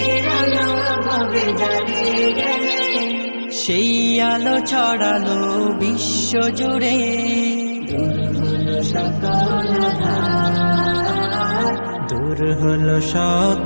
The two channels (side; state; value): both; inverted; correlation -1.00